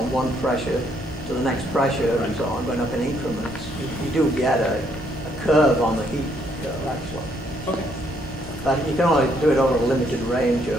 one pressure to the next pressure and so on, going up in increments, you do get a curve on the heat curve, actually. Okay. But you can only do it over a limited range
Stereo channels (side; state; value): both; normal; correlation 0.70